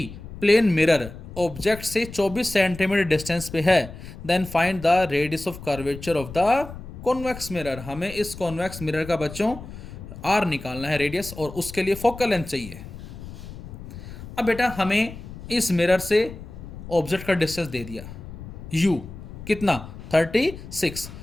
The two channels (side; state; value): left; noise; rumble, 13 dB below the sound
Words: प्लेन मिरर ऑब्जेक्ट से 24 सेंटीमीटर डिस्टेंस पे है, then find the radius of curvature of the convex mirror. हमें इस कॉन्वेक्स मिरर का बच्चों R निकालना है, रेडियस, और उसके लिए फोकल लेंथ चाहिए। अब बेटा हमें इस मिरर से ऑब्जेक्ट का डिस्टेंस दे दिया U कितना 36,